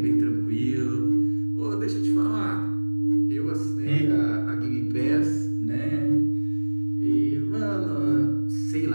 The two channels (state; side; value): inverted; both; correlation -1.00